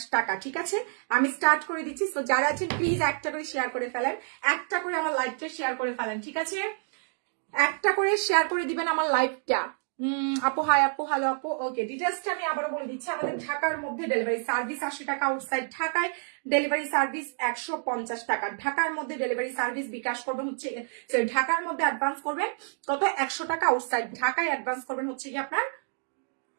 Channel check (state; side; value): silent; left; 59 dB below the other